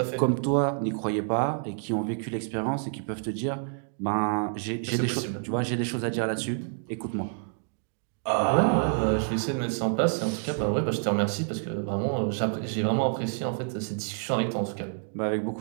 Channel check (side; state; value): left; silent; digital silence